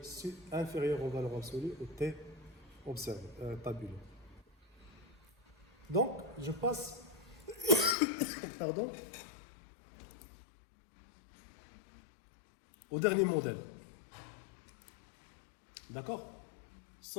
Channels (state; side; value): drops out; right; at 8.0 s